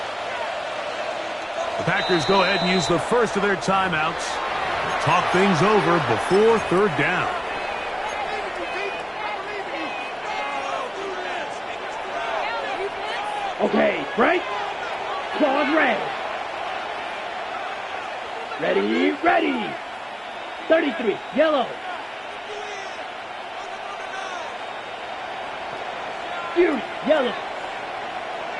The Packers go ahead and use the first of their timeouts. Talk things over before third down. Okay, Frank. Claws red. Ready, ready. 33, yellow. Fury, yellow.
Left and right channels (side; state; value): both; identical; correlation 1.00